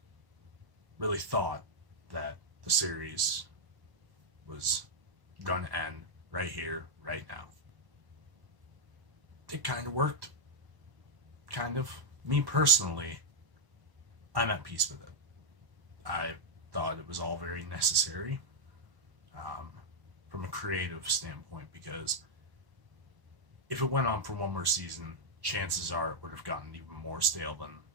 thought that the series was going to end right here, right now. It kind of worked. Kind of. Me personally, I'm at peace with it. I thought it was all very necessary from a creative standpoint, because if it went on for one more season, chances are it would have gotten even more stale than,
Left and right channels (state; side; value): late; left; 1.0 ms